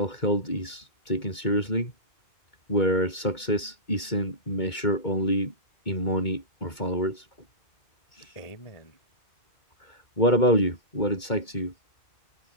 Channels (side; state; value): right; late; 2.2 ms